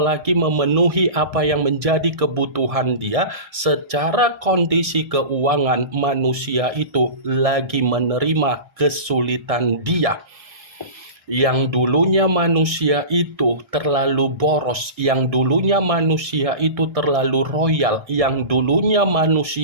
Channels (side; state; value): left; late; 1.6 ms